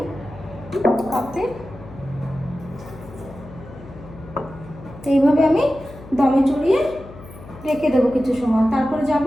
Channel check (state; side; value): noise; left; hum, 17 dB below the sound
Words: কাপে। এইভাবে আমি দমে চড়িয়ে রেখে দেবো কিছু সময়। তারপরে যাব